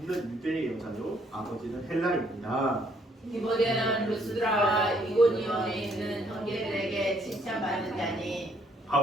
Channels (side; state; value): both; normal; correlation 0.67